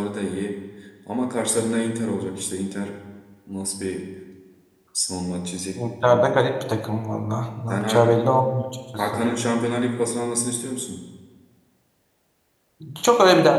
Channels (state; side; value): identical; both; correlation 1.00